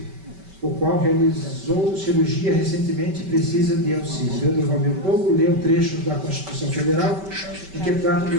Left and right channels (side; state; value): left; late; 5.2 ms